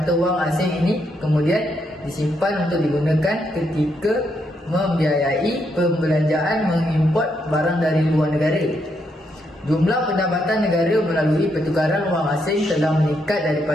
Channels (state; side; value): normal; both; correlation 0.78